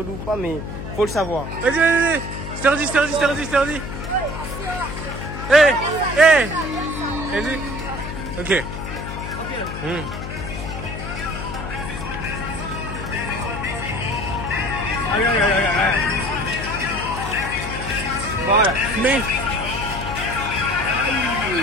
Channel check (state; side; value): noise; left; hum, 7 dB below the sound